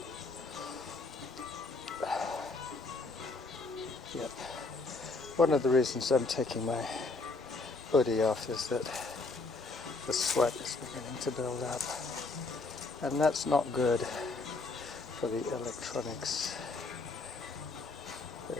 Yep. One of the reasons I'm taking my hoodie off is that the sweat is beginning to build up. And that's not good for the electronics. They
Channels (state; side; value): quieter; right; 3.6 dB